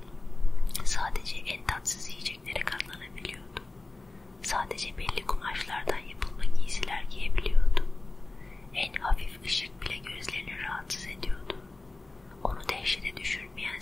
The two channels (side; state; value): right; quieter; 3.1 dB